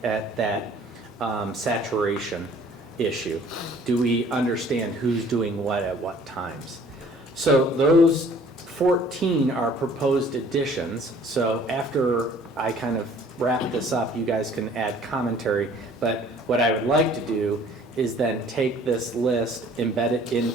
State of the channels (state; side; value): normal; both; correlation 0.54